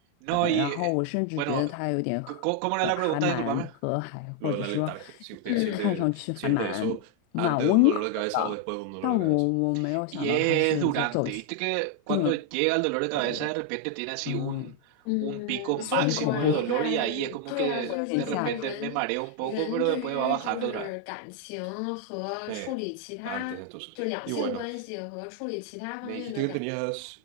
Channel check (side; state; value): both; different; correlation 0.01